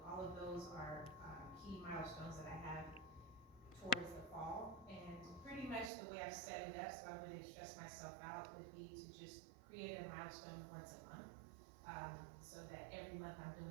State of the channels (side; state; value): left; drops out; at 5.9 s